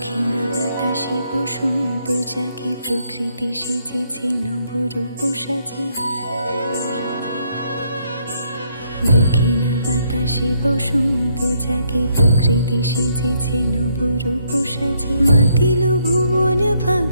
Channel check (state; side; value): inverted; both; correlation -0.72